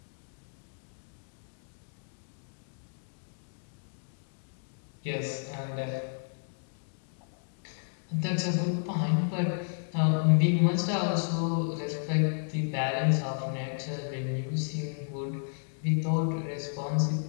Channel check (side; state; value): right; silent; digital silence